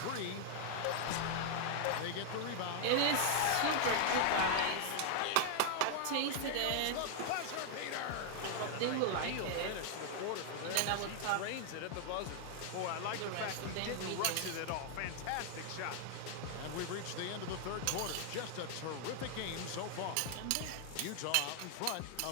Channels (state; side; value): different; both; correlation 0.00